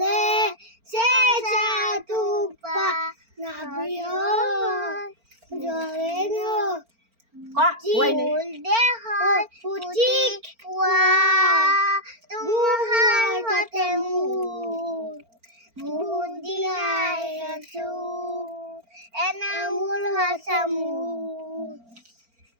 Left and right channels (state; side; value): late; left; 4.4 ms